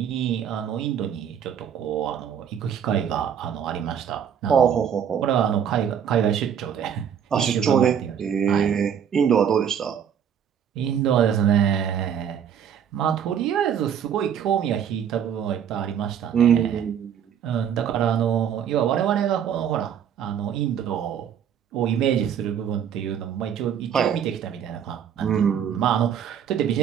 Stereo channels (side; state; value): left; quieter; 8.5 dB